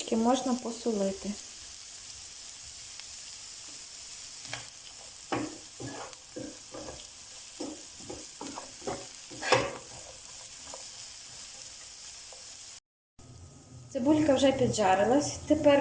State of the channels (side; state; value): both; identical; correlation 1.00